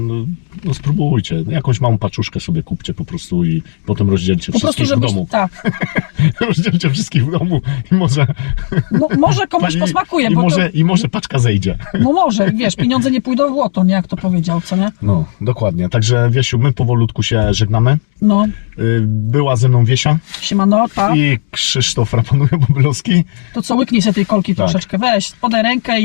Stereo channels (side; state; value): right; silent; digital silence